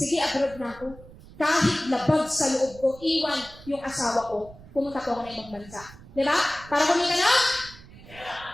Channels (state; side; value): noise; right; rumble, 20 dB below the sound